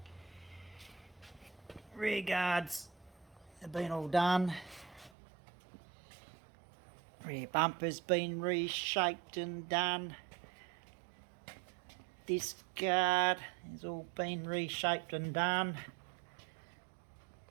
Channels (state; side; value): drops out; left; at 5.1 s